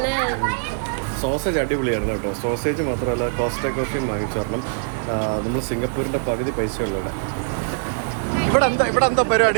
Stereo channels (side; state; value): left; silent; digital silence